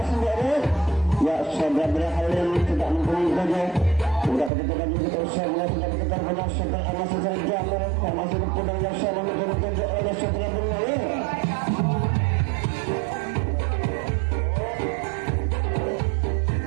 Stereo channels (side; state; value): left; drops out; at 4.5 s